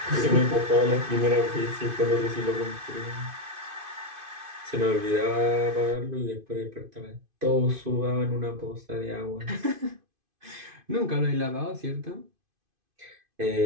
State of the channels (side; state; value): left; late; 2.5 ms